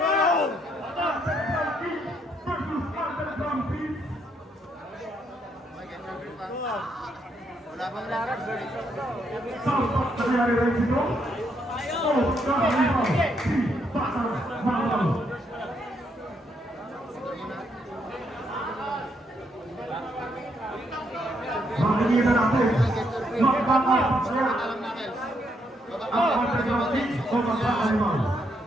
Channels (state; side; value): normal; both; correlation 0.75